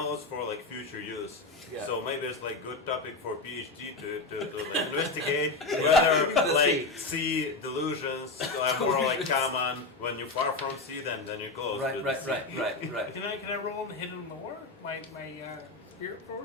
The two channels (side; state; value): right; quieter; 3.5 dB